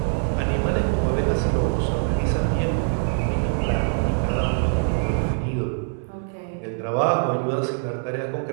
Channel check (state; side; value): silent; left; 61 dB below the other